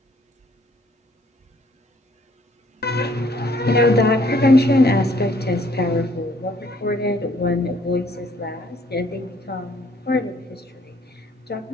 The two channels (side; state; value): both; normal; correlation 0.63